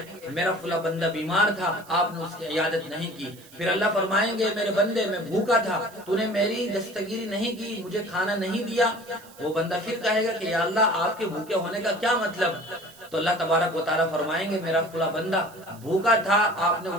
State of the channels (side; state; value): right; noise; hiss, 23 dB below the sound